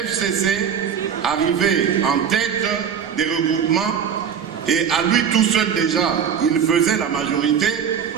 arrivait en tête des regroupements et à lui tout seul déjà, il faisait la majorité,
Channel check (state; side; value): quieter; left; 7.7 dB